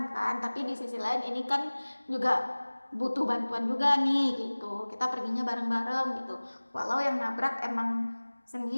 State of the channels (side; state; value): both; inverted; correlation -1.00